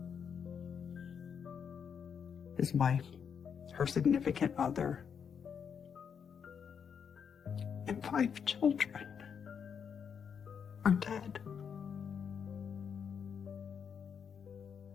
His wife, her significant other, and 5 children are dead.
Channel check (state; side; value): quieter; right; 7.1 dB